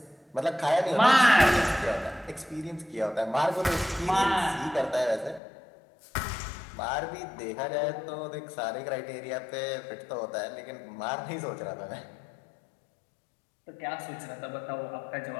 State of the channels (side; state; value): right; drops out; at 5.4 s